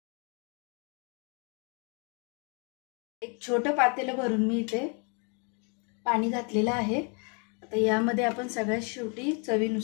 एक छोटं पातेलं भरून मी इथे पाणी घातलेलं आहे। आता यामध्ये आपण सगळ्यात शेवटी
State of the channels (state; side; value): quieter; right; 36.1 dB